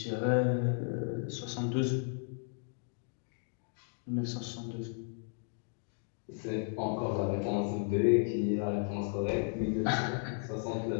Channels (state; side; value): silent; right; 55 dB below the other